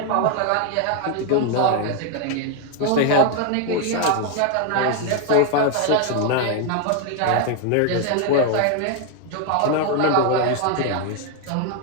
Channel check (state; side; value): different; both; correlation 0.01